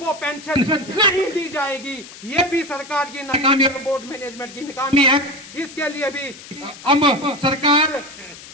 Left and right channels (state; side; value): noise; left; hiss, 17 dB below the sound